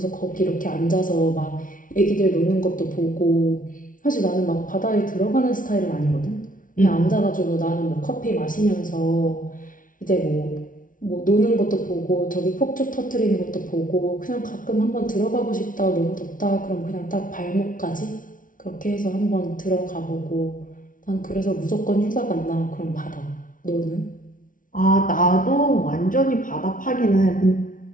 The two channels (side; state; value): right; late; 0.38 ms